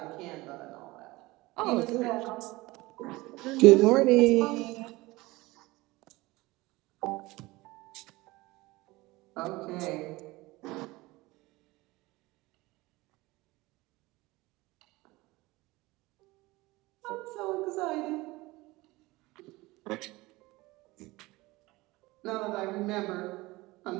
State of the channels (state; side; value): quieter; left; 20.9 dB